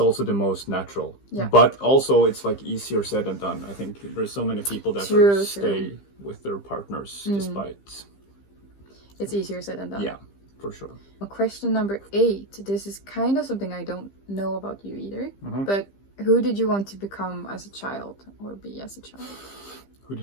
the most natural. Yeah. But also it's like easier said than done. I think there's so many people that stay with their partners despite. It's easier said than done. Yeah, for sure. Question number 8. This is kind of something I don't know about you either. But who did you want to become as a child or be as a child? Who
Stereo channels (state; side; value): late; right; 15 ms